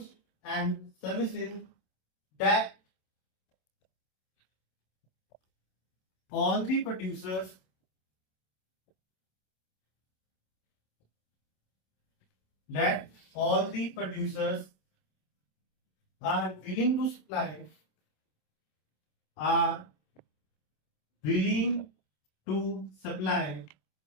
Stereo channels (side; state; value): right; late; 27 ms